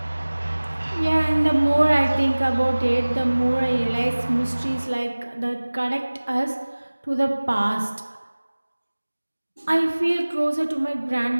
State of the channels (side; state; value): both; inverted; correlation -1.00